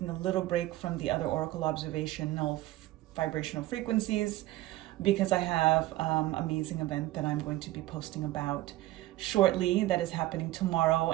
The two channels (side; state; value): left; quieter; 16.6 dB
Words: a little break from the other oracle observational vibrational frequencies because I have an amazing event that I'm going to be posting about shortly that is happening tomorrow,